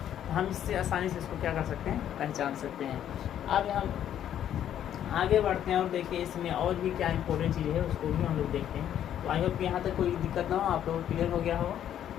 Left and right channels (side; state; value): right; quieter; 10.4 dB